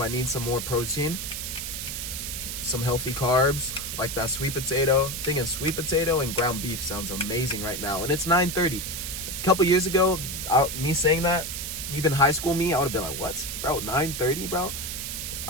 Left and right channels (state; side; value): noise; right; hiss, 5 dB below the sound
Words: I need some more protein, some healthy carbs, like that sweet potato. Thinking sweet potato and ground beef sounds amazing right now, and it's 9:30. A couple years ago, me saying that, even high school me, I would have been like, what, bro, 9:30, bro?